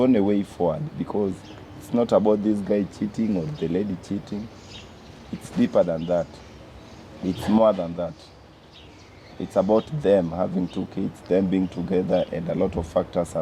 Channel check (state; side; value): identical; both; correlation 1.00